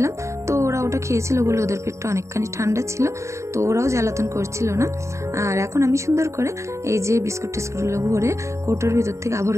তো ওরা ওটা খেয়েছিল বলে ওদের পেটটা অনেকখানি ঠান্ডা ছিল, তো ওরাও জ্বালাতন করছিল না। আর এখন আমি সুন্দর করে এই যে টিস্কুটগুলো ভরে কৌটোর ভিতর থেকে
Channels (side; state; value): left; late; 0.14 ms